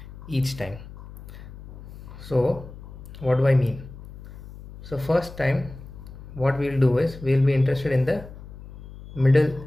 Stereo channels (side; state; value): left; noise; hum, 15 dB below the sound